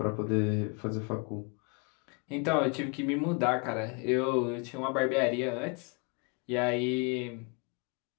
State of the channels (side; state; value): right; quieter; 33.2 dB